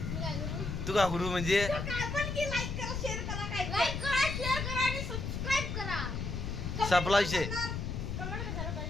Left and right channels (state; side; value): noise; left; rumble, 4 dB below the sound